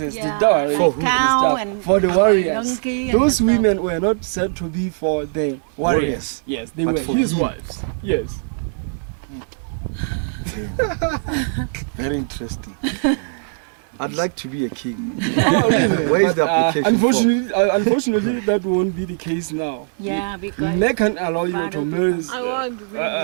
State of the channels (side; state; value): left; silent; digital silence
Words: the dowry, like and cow stuff, and for the warriors. donkey and Those stuff. women were not said to be for the warriors. Yes, they But were for his him. wives. Yes. Very interesting. I'd like to be a king. Oh, really? Where is the application Unfortunately, that won't be the case now. Yeah, because They can't allow you to marry. so